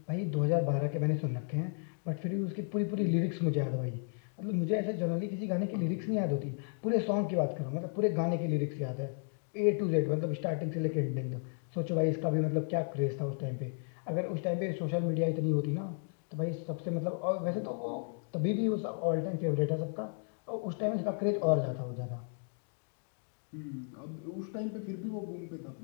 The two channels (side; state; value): right; silent; 55 dB below the other